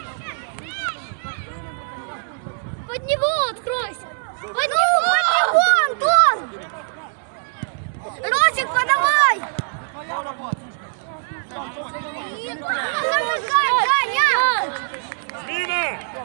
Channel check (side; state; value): left; silent; 64 dB below the other